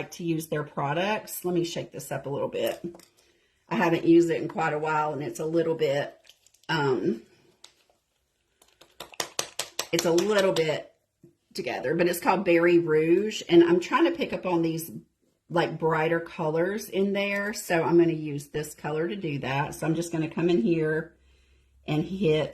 to use their products. Let me shake this up a little bit. I haven't used it in quite a while and it's a little bit, together, but it's called Berry Rouge, and I'm trying to pick up on these like brighter colors in there, so I'm going to use this color to do that. So I'm just going to come in here and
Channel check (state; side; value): identical; both; correlation 1.00